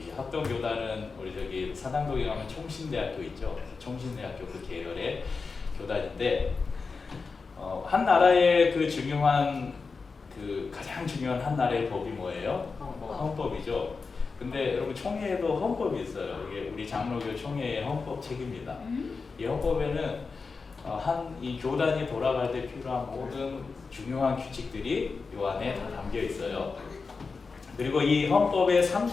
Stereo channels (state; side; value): quieter; right; 4.6 dB